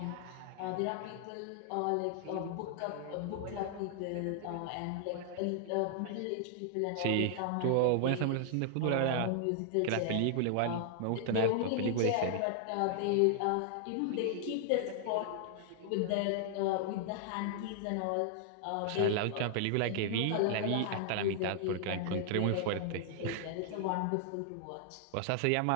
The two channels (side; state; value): both; different; correlation -0.01